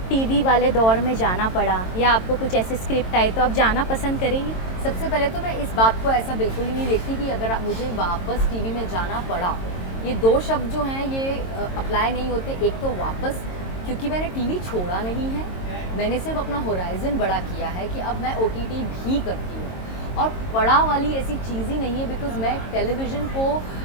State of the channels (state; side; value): late; right; 22 ms